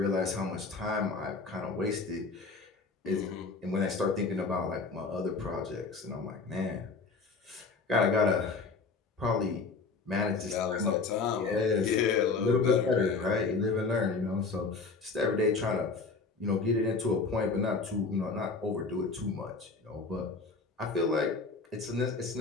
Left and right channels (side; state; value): right; quieter; 4.2 dB